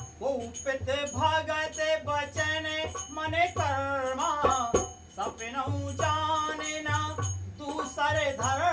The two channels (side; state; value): both; identical; correlation 1.00